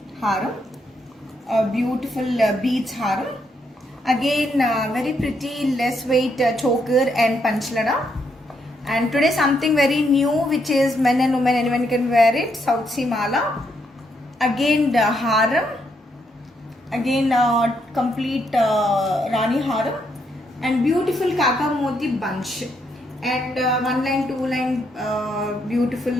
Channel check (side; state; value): both; normal; correlation 0.76